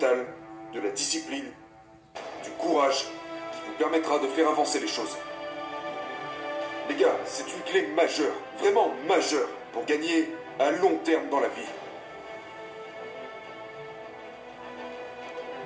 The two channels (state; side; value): identical; both; correlation 1.00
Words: de la discipline, du courage qui vous permettra de faire avancer les choses. Les gars, c'est une clé majeure, vraiment majeure, pour gagner à long terme dans la vie.